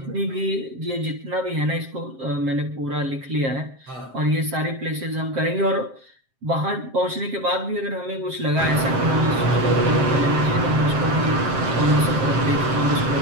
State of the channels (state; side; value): late; left; 7.6 ms